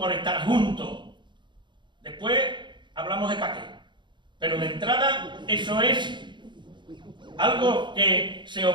estar juntos. Después hablamos de pa' qué. Pero de entrada, eso es algo que se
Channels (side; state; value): left; late; 0.23 ms